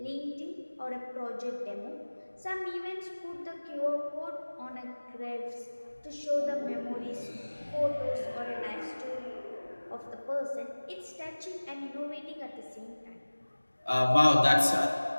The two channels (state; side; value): inverted; both; correlation -1.00